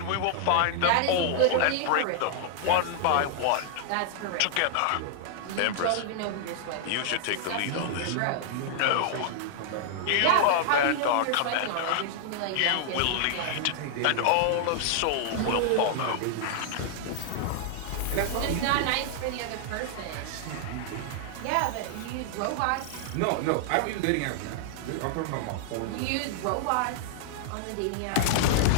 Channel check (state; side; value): different; both; correlation -0.01